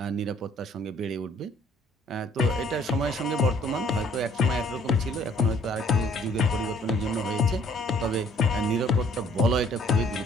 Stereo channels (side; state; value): both; normal; correlation 0.60